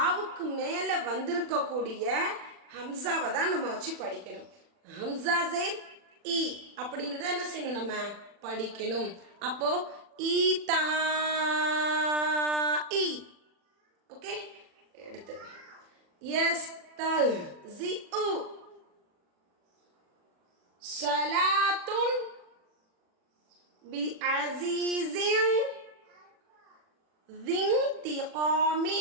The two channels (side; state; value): left; late; 40 ms